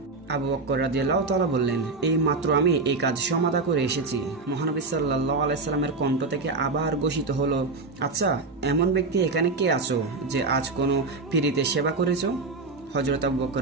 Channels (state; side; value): quieter; left; 3.7 dB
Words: আবু বকর রাদিয়াল্লাহু তাআলা বললেন, এই মাত্র আমি এই কাজ সমাধা করে এসেছি। মহানবী সাল্লাল্লাহু আলাইহি সাল্লামের কণ্ঠ থেকে আবার ঘোষিত হলো, আচ্ছা এমন ব্যক্তি এখানে কে আছো যে আজ কোনো পীড়িতের সেবা করেছো? হযরত আবু বকর